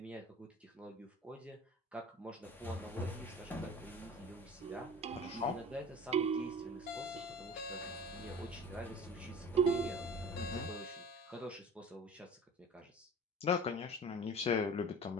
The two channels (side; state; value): both; normal; correlation 0.39